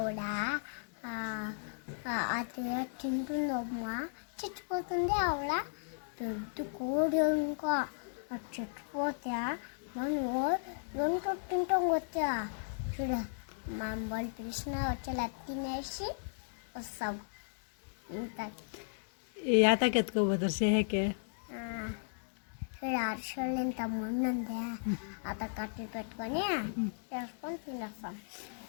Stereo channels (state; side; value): silent; right; digital silence